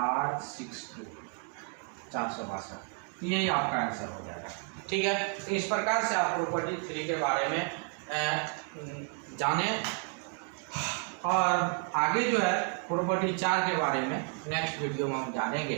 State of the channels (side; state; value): left; quieter; 39.3 dB